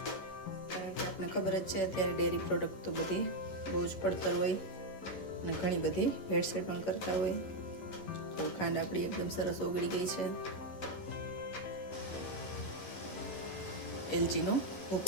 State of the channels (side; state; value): right; late; 11 ms